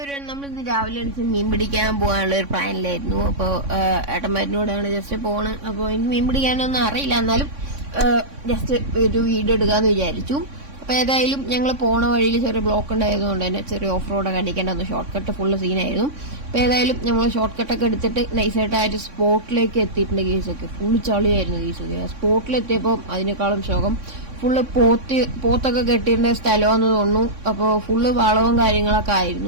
നമ്മളിന്ന് രാവിലെ എണീച്ച് മീൻ പിടിക്കാൻ പോകാനുള്ള ഒരു പ്ലാനിലായിരുന്നു. അപ്പോൾ ഏട്ടന്മാരിനോടാണ് ജസ്റ്റ് പോണ്. അപ്പോൾ എനിക്ക് മീൻ പിടിക്കാനൊന്നും അറിയില്ല, എന്നാലും ജസ്റ്റ് ഒരു വീഡിയോ എടുക്കാന്ന് വിചാരിച്ചു. അപ്പോൾ ഏതായാലും ഞങ്ങൾ പോണ വഴിയിൽ ചെറിയ ബ്ലോക്ക് ഉണ്ടായതുകൊണ്ട് തന്നെ ചെറിയ ഓഫ് റോഡൊക്കെ അടിക്കേണ്ട ഷോർട്ട് കട്ട് ഫുള്ള് സീനായിരുന്നു. അപ്പോൾ ഏതായാലും ഞങ്ങൾ ഷോർട്ട് കട്ടൊക്കെ എടുത്തിട്ട് നൈസായിട്ട് ആ ഒരു സ്പോട്ടിലേക്ക് എത്തിയിട്ടുണ്ട്. കേസൊക്കെ ഫുള്ള് ചളിയായിരുന്നു. കേസൊക്കെ സ്പോട്ടിലെത്തിയപ്പോൾ അതിനേക്കാളും ശോകം ഫുള്ള് പോത്തൊക്കെ കെട്ടിയിരുന്ന സ്ഥലമാണെന്ന് തോന്നുന്നു. അപ്പോൾ ഫുള്ള് വളവും കാര്യങ്ങളൊക്കെ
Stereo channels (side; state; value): left; late; 3.6 ms